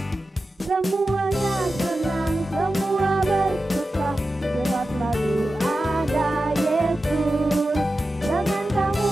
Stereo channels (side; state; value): both; normal; correlation 0.93